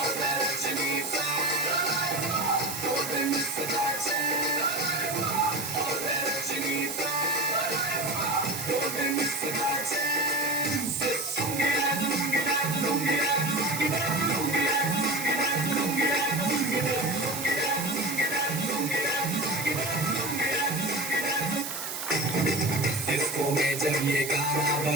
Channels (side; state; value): right; noise; hiss, 5 dB below the sound